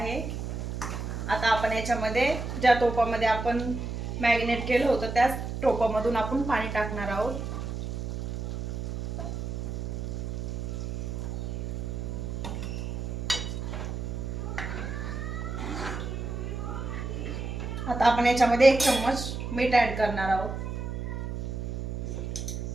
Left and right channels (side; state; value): right; noise; hum, 4 dB below the sound